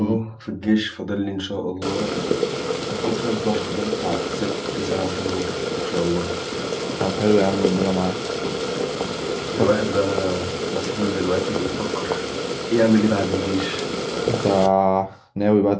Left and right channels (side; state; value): both; identical; correlation 1.00